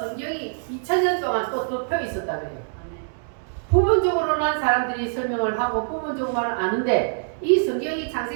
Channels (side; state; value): left; silent; digital silence